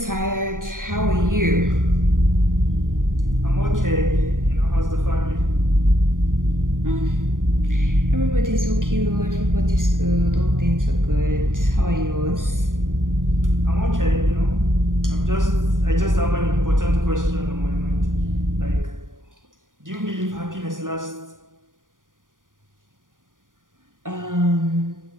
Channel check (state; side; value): late; left; 0.89 ms